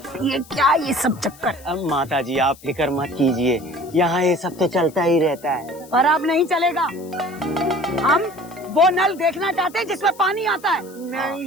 ये क्या ये सब चक्कर? अब माता जी आप फिक्र मत कीजिए, यहाँ ये सब तो चलता ही रहता है। पर अब नहीं चलेगा। हम वो नल देखना चाहते हैं जिसमें पानी आता है।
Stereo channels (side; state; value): left; noise; hiss, 22 dB below the sound